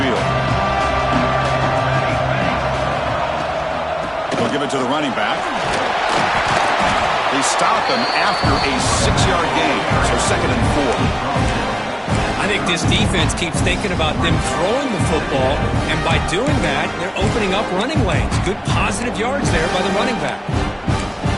field. They'll give it to the running back. They stop him after a 6-yard gain. So 2nd and 4. I think this defense keeps thinking about them throwing the football, and by doing that, they're opening up running lanes. Good positive yards there by the running back.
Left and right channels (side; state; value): both; identical; correlation 1.00